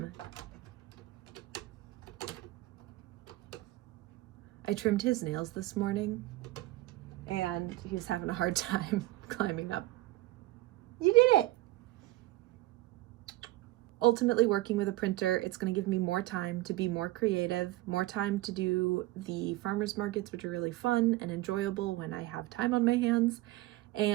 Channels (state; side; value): quieter; left; 18.3 dB